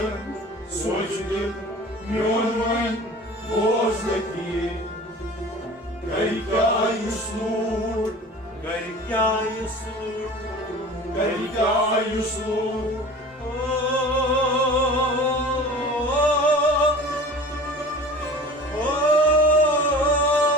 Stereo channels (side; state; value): both; normal; correlation 0.40